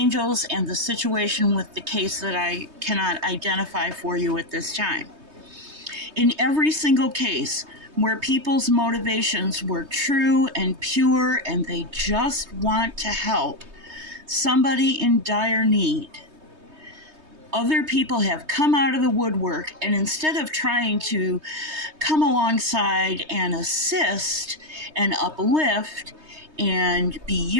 and the situation with the case that I cannot identify for you at this time. In every single case where people's motivations were true and pure and they just want to help somebody in dire need, other people have come out of the woodwork, and instead of trying to come alongside and assist and uplift and be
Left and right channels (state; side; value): late; left; 3.2 ms